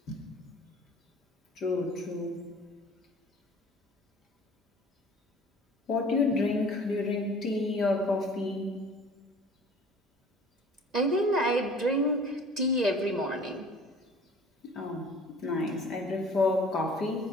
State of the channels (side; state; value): both; normal; correlation 0.48